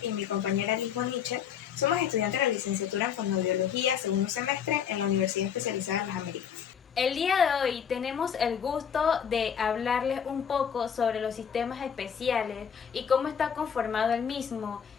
y mi compañera Lisboa Nietzsche somos estudiantes de la licenciatura en Fonoaudiología, segundo semestre en la Universidad Especializada en las Américas. El día de hoy tenemos el gusto de hablarles un poco sobre los sistemas especiales y cómo está conformado el mismo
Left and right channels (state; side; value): quieter; right; 7.9 dB